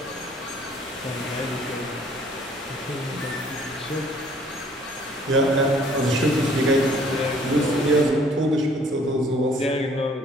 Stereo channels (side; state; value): both; normal; correlation 0.58